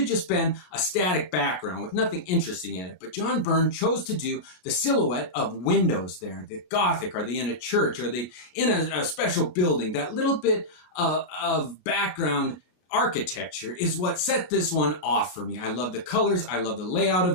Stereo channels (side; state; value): right; late; 34 ms